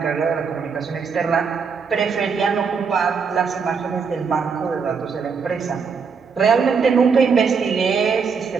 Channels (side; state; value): left; quieter; 5.7 dB